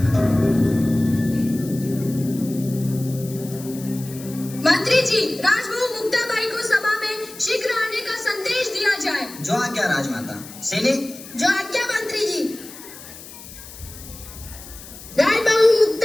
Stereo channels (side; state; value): left; noise; hiss, 16 dB below the sound